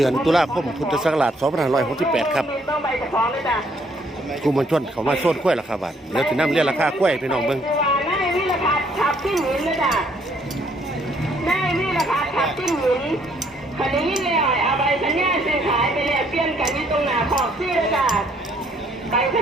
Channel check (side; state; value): both; normal; correlation 0.66